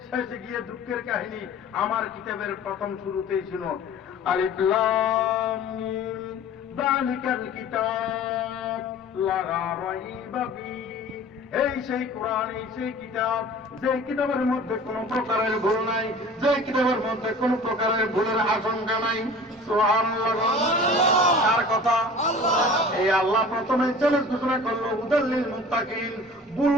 শেষে গিয়ে দুঃখের কাহিনী, আমার কিতাবের প্রথম শুরুতেই ছিল আলিফ লাম মিম যালিকাল কিতাব লা রাইবা ফীহি, এই সেই কোরআন, এই সেই কিতাব, যে কিতাবের মধ্যে কোন প্রকারের ভুল নাই, যে কিতাবের মধ্যে কোন প্রকারের ভুলের আশঙ্কা নাই। সুবহানাল্লাহ। কার কথা? এই আল্লাহ প্রথমে চ্যালেঞ্জ ঘোষণা করলো হুদাল লিল মুত্তাকিন, ভুল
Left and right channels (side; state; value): both; normal; correlation 0.43